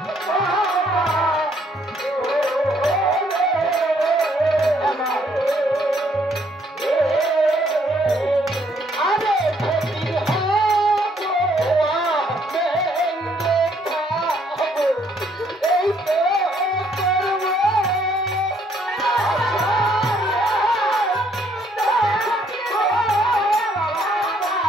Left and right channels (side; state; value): both; normal; correlation 0.67